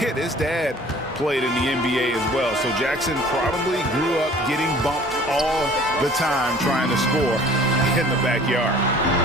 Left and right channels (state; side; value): normal; both; correlation 0.50